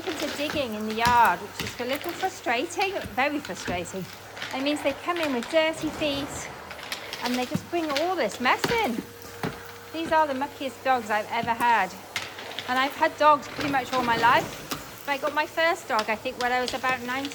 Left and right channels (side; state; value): both; identical; correlation 1.00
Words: to digging in the yard, which is a little frustrating, very frustrating. It means they come in with dirty feet and they just bring all this mess in. These are the muckiest dogs I've ever had. And I've had dogs pretty much all my life. I got my first dog, I think, when I was about